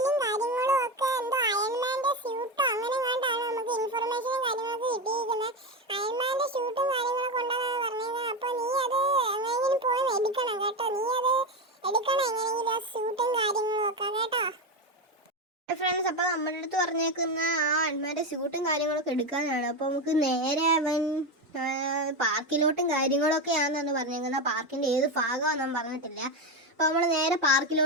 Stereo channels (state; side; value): normal; both; correlation 0.14